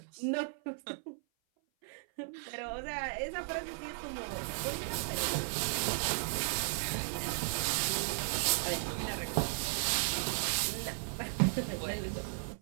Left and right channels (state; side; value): silent; left; 54 dB below the other